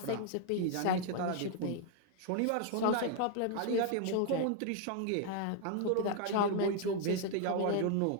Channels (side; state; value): both; different; correlation 0.00